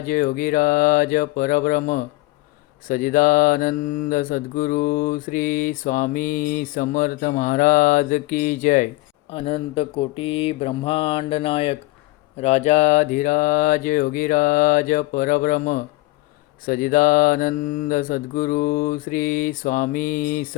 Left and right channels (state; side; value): quieter; right; 20.4 dB